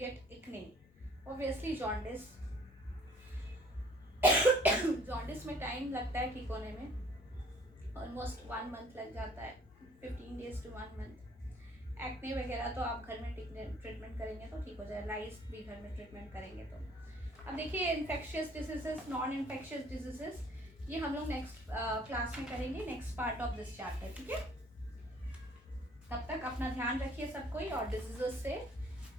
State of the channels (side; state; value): both; normal; correlation 0.56